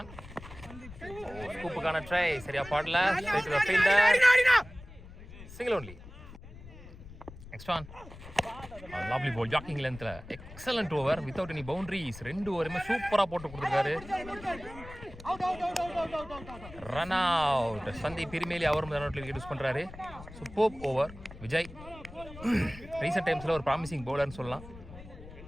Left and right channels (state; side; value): noise; left; rumble, 16 dB below the sound